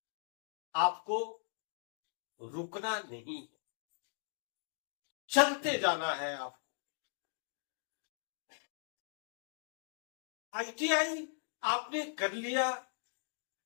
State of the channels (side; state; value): right; silent; digital silence